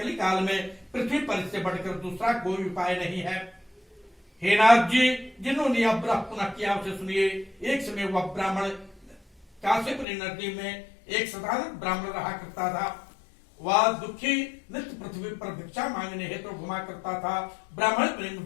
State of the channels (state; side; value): drops out; right; at 10.1 s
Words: काल में पृथ्वी पर इससे बढ़कर दूसरा कोई उपाय नहीं है। हे नाथ जी, जिन्होंने यह व्रत पुनः किया उसे सुनिए। एक समय वह ब्राह्मण काशीपुरी नदी में एक साधारण ब्राह्मण रहा करता था। वह दुखी नित्य पृथ्वी पर भिक्षा मांगने हेतु घुमा करता था। ब्राह्मण प्रेम